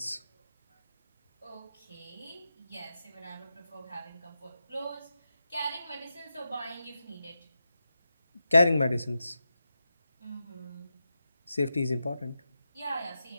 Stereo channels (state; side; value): inverted; both; correlation -0.89